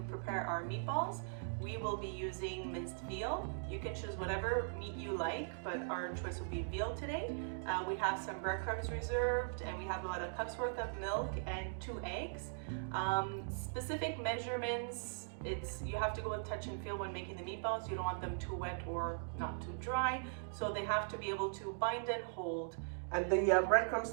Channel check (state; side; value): silent; left; digital silence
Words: prepare our meatballs. We will be using minced veal. You can choose whatever meat you like, but our choice will be veal today. We have some breadcrumbs reserved, and we have about a cup's worth of milk and 2 eggs. Specific measurements, you have to go with touch and feel when making the meatballs. You don't want them too wet or not too dry, so they have to be able to bind and hold. And the breadcrumbs